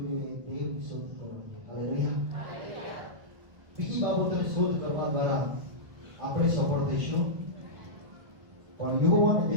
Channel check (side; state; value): left; late; 1.6 ms